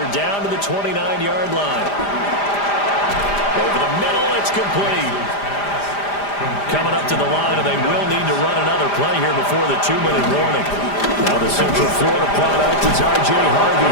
down to the 29-yard line. Over the middle, it's complete. Coming up to the line, and they will need to run another play here before the 2-minute warning. Now the Central Florida product is R.J.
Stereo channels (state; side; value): late; right; 5.0 ms